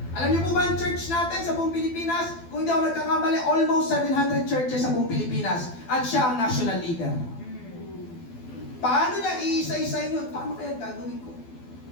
Alam niyo po ba ang church natin sa buong Pilipinas? Kung hindi ako nagkakamali, almost 700 churches sa buong Pilipinas. At siya ang national leader. Paano niya iisa-isain yun? Paano kaya gagawin ko?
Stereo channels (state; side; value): late; right; 12 ms